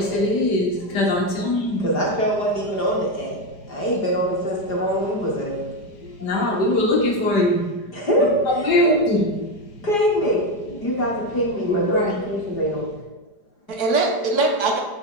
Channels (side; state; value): right; late; 4.9 ms